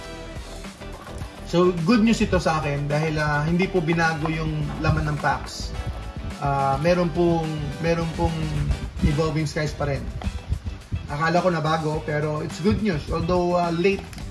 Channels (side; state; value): both; identical; correlation 1.00